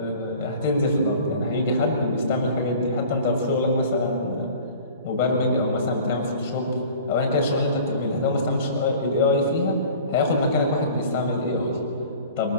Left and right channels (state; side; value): inverted; both; correlation -0.45